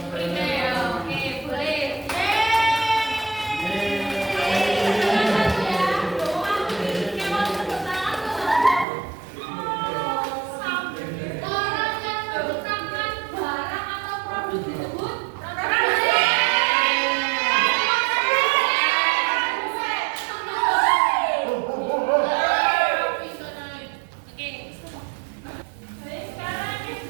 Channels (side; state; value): left; drops out; at 8.8 s